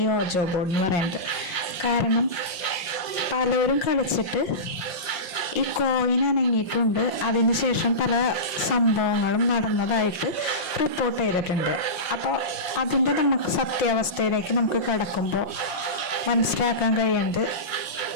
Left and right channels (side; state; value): right; late; 5.6 ms